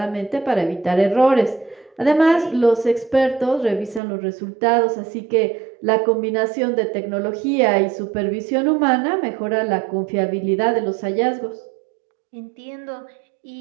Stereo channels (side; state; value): left; drops out; at 4.0 s